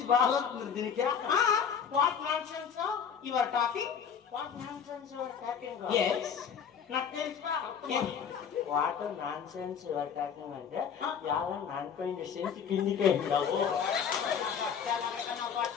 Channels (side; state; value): right; quieter; 7.4 dB